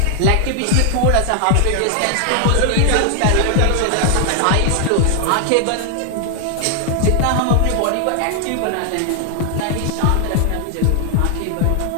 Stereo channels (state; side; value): different; both; correlation 0.00